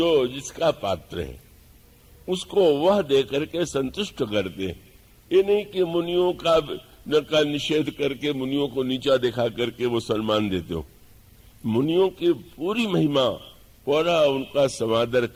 जिसका पात्र है उसको वह दे करके संतुष्ट करते हैं। ये नहीं कि मुनियों का निषेध करके मुनियों को नीचा दिखा करके वो सम्मान देते हो। मुनियों की पूरी महिमा, पूरा उनका समादर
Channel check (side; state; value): both; identical; correlation 1.00